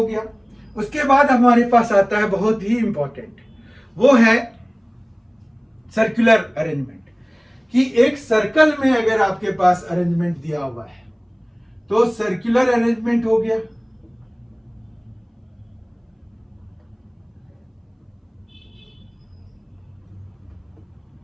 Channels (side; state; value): both; identical; correlation 1.00